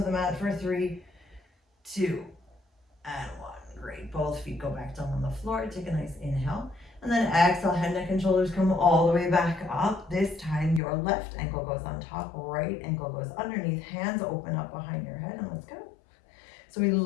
mat for 3, 2, and 1. Great, both feet go back down on the floor, take a nice inhale. And then exhale, head, neck, and shoulders come all the way back up. This time, your left ankle goes on top, right ankle goes underneath, hands open up behind your head, and let's go. So we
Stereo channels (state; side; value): drops out; right; at 10.8 s